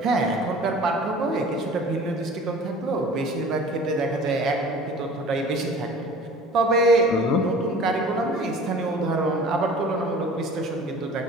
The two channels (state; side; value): normal; both; correlation 0.44